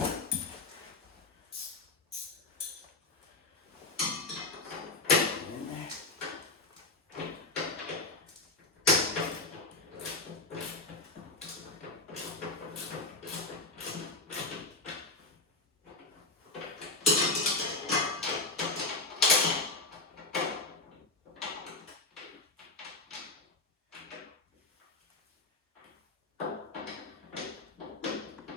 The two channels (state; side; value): quieter; right; 3.3 dB